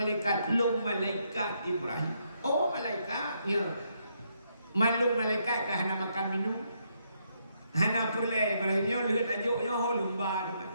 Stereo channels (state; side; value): inverted; both; correlation -0.76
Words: long malaikat Ibrahim oh malaikatnya malung malaikat kah hana makan minum hana perle Ibrahimnya lihat ajoknya ho lumba